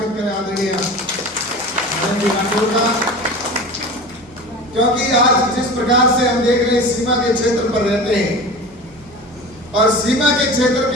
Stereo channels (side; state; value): both; normal; correlation 0.34